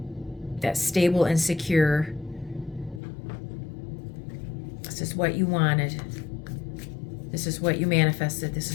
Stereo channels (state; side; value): drops out; right; at 3.0 s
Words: That's stable and secure. This is what you wanted. This is what you manifested. This